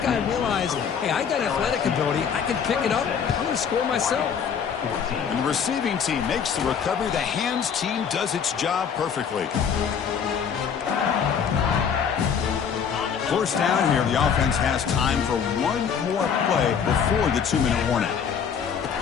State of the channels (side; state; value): right; quieter; 7.2 dB